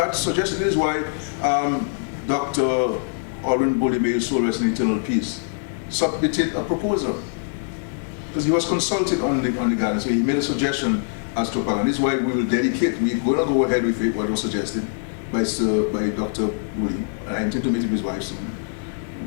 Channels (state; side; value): silent; right; digital silence